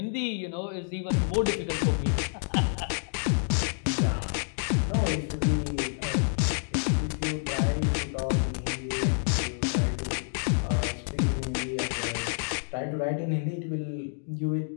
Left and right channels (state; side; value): silent; right; digital silence